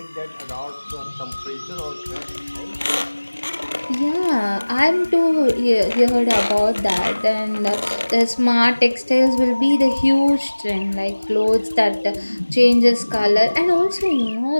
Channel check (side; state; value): both; inverted; correlation -1.00